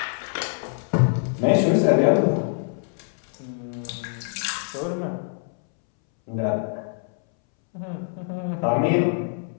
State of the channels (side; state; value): right; silent; 62 dB below the other